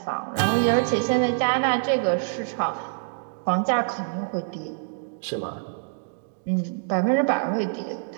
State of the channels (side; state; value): left; silent; digital silence